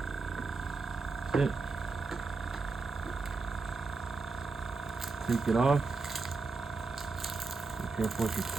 That's it. Take it off. Be careful with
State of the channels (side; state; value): left; quieter; 4.1 dB